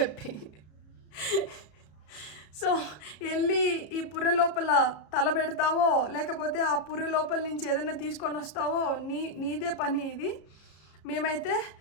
సో వెళ్ళి ఈ పుర్రె లోపల తల పెడతావో లేకపోతే ఆ పుర్రె లోపల నుంచి ఏదైనా తీసుకొని వస్తావో నీదే పని ఇది. మేమైతే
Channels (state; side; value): late; right; 33 ms